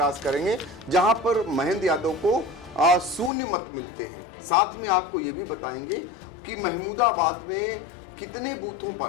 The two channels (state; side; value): drops out; right; at 3.3 s